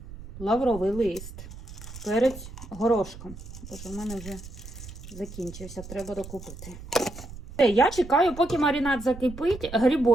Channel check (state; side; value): noise; right; rumble, 14 dB below the sound